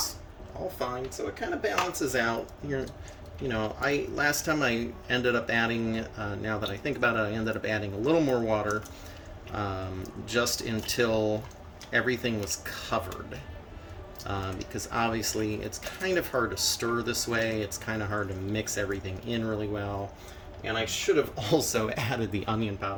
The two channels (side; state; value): both; identical; correlation 1.00